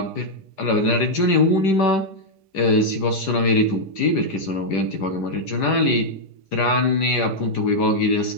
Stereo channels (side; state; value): right; late; 5.0 ms